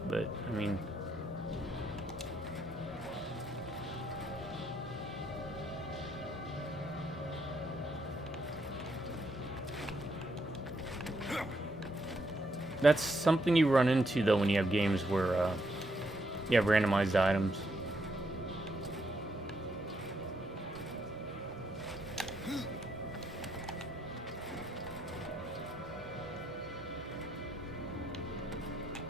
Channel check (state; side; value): normal; both; correlation 0.76